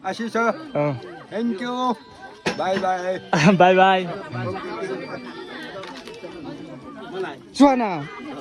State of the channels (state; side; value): identical; both; correlation 1.00